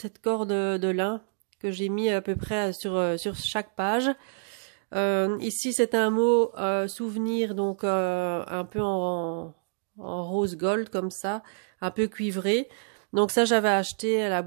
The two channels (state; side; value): silent; left; digital silence